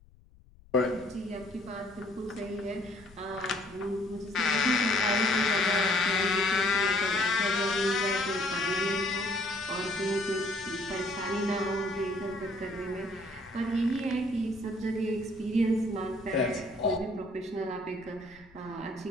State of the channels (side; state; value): left; noise; rumble, 26 dB below the sound